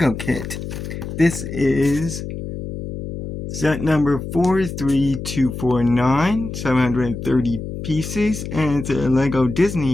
kit. This is set number 43249, 730 pieces, and it's a LEGO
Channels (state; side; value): noise; left; hum, 7 dB below the sound